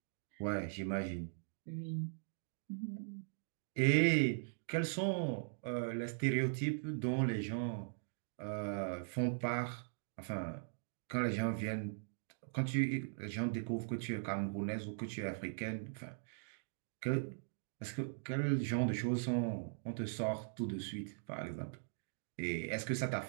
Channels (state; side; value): silent; left; digital silence